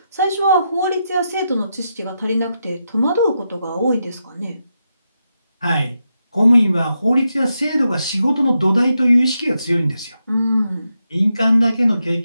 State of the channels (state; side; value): inverted; both; correlation -0.85